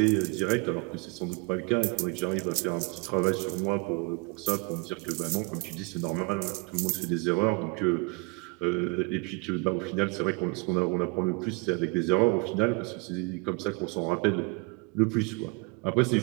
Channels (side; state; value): left; quieter; 30.1 dB